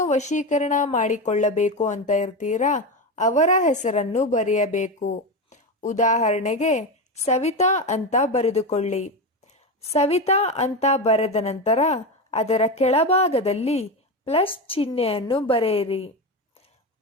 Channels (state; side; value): normal; both; correlation 0.17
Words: ವಶೀಕರಣ ಮಾಡಿಕೊಳ್ಳಬೇಕು ಅಂತ ಇರ್ತೀರಾ ಅವರ ಹೆಸರನ್ನು ಬರೆಯಬೇಕು. ಉದಾಹರಣೆಗೆ ಸವಿತಾ ಅಂತ ಬರೆದುಕೊಳ್ಳಿ. ಸವಿತಾ ಅಂತ ಬರೆದ ನಂತರ ಅದರ ಕೆಳಭಾಗದಲ್ಲಿ ಪ್ಲಸ್ ಚಿಹ್ನೆಯನ್ನು ಬರೆಯಿರಿ.